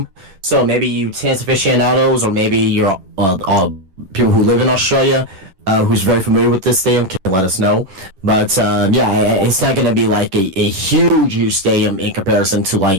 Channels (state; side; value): late; left; 11 ms